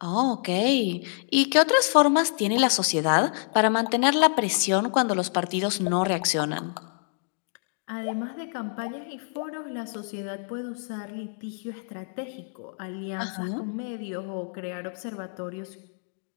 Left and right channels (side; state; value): right; silent; digital silence